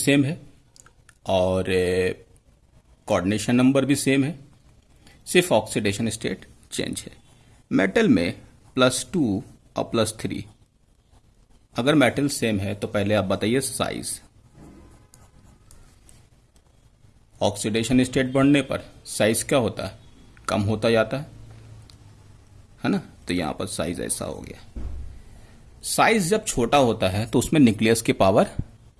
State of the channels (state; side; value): identical; both; correlation 1.00